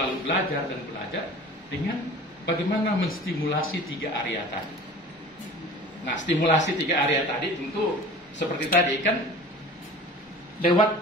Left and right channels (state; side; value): normal; both; correlation 0.41